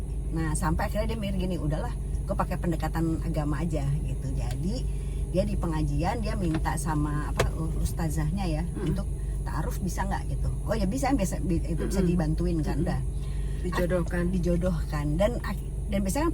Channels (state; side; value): identical; both; correlation 1.00